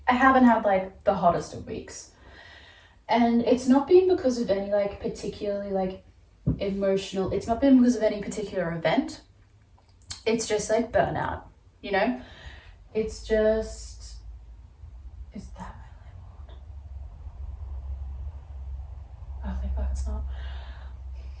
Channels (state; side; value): identical; both; correlation 1.00